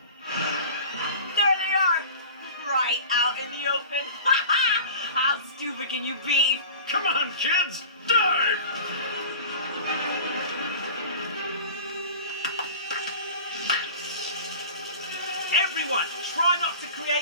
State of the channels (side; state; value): both; inverted; correlation -0.38